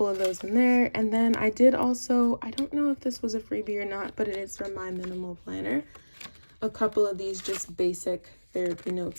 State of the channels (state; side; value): inverted; both; correlation -1.00